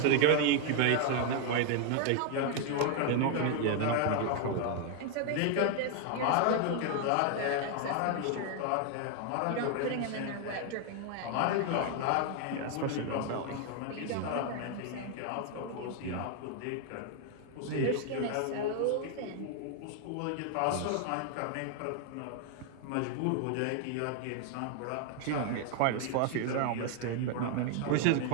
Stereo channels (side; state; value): both; different; correlation 0.00